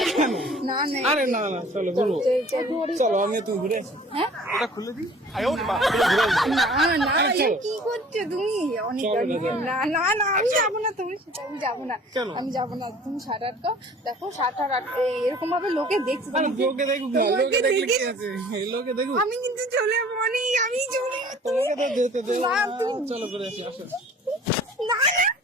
কেন? না না, আরে না না, চলো ঘুরবো। চলো আমি তুমি ঘুরে আসি। হ্যাঁ? এটা খুলে দিই। ঘুরে আসি। না না, আরে এ চলো। কি করছো তুমি? অনেক চলো অনেক। না, না না না, আমি যাবো না, তুমি সেটা আমি যাবো না। কেন? আমি যাবো না, তুমি শার্ট আটকাও। দেখো শার্ট এরকম ভাবে লোকে দেখছে। আরে তোমাকে- লোকে দেখুক না, তোমাকে লোকে দেখলে কি দেখে- আছে? এই লোকে দেখুক। আমি কিন্তু চলে যাবো, আমি চলে যাবো। তোমাকে তো যেতে দে। না, তুমি- চলো ঘুরে আসি, আসো। না না,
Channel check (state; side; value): normal; both; correlation 0.49